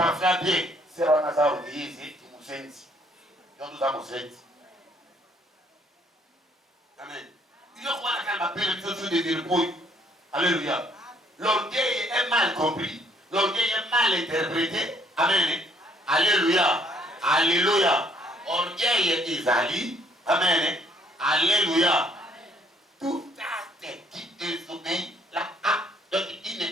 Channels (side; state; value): both; normal; correlation 0.65